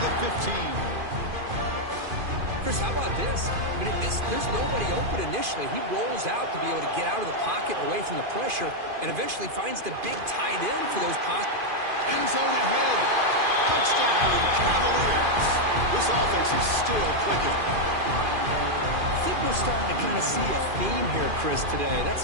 the 15. Chris, how about this? I mean, there's nobody open initially. He rolls out to be able to get out of the pocket away from the pressure and eventually finds the big tight end for those possible. End zone ahead. Touchdown, Cavaliers. This offense is still clicking. I think we're starting to kind of see a theme here, Chris, today.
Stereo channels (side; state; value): left; late; 2.5 ms